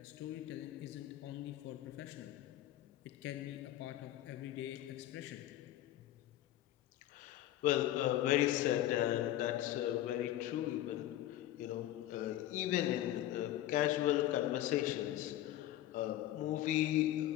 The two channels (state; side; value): quieter; right; 13.6 dB